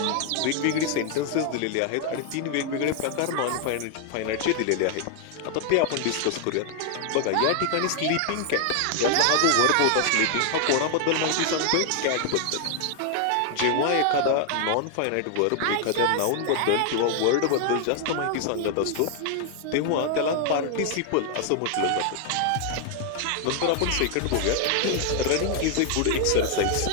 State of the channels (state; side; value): different; both; correlation 0.00